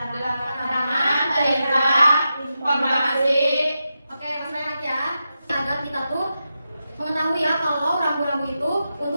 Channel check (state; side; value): inverted; both; correlation -0.89